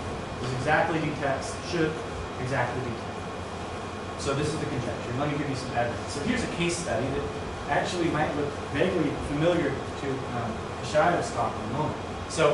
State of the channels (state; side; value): identical; both; correlation 1.00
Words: This exactly detects, should exactly detect. So this is the conjecture. Let me give you some evidence. So here's a case study that actually might look vaguely familiar to Shaida's talk in a moment.